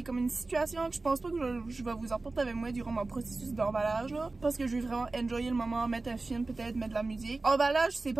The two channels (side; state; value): left; quieter; 3.4 dB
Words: comme une situation que je pense pas que je vais vous apporter avec moi durant mon processus d'emballage là, parce que je vais vraiment enjoyer le moment, mettre un film, peut-être mettre de la musique. Emballage, c'est